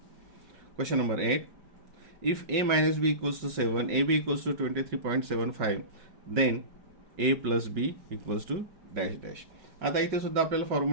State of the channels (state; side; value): late; left; 5.3 ms